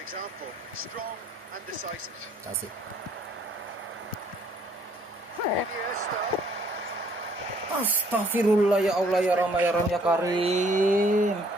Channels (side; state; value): both; normal; correlation 0.63